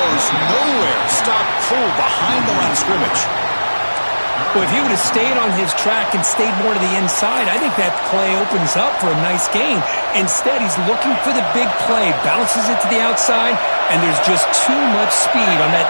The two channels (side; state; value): both; inverted; correlation -1.00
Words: nowhere. Stopped cold behind the line of scrimmage. Well, if he would have stayed on his track and stayed more to the inside, I think that play opens up for a nice gain. Instead, he's looking for the big play, bounces it to the outside, and there's just too much speed on